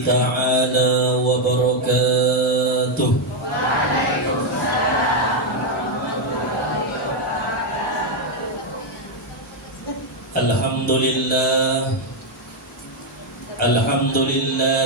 ta'ala wabarakatuh. Alhamdulillah,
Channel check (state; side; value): normal; both; correlation 0.02